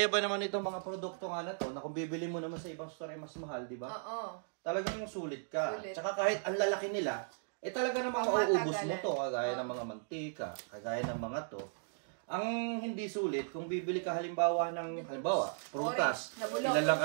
ba naman itong mga produkto nga na to, na kung bibili mo naman sa ibang store ay mas mahal, di ba? Oo. Talagang sulit ka. Sulit. Tsaka kahit ang lalaki nila, talaga namang mauubos mo to, kagaya ng mga mantika, kagaya ng mga to. Ang hindi sulit, kung bibili ka halimbawa, prutas, ilan lang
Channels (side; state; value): left; silent; digital silence